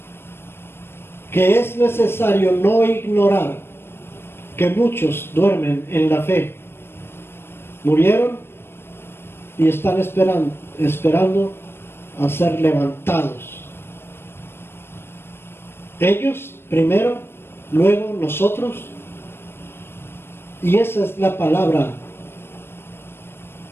Que es necesario no ignorar que muchos duermen en la fe. Murieron y están esperando a ser levantados. Ellos primero, luego nosotros. Y esa es la palabra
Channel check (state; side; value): late; right; 0.11 ms